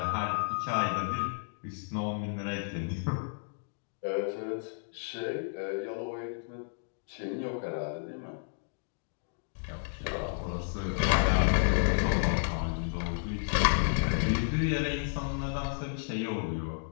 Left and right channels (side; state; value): right; silent; digital silence